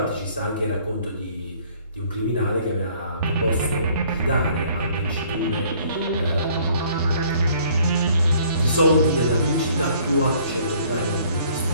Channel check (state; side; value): inverted; both; correlation -0.59